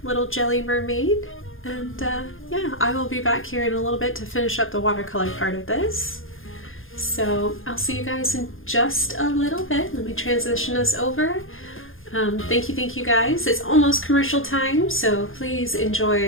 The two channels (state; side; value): late; right; 0.59 ms